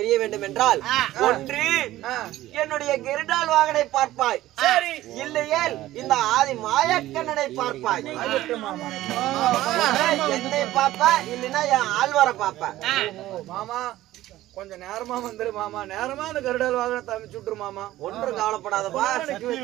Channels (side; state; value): left; quieter; 15.3 dB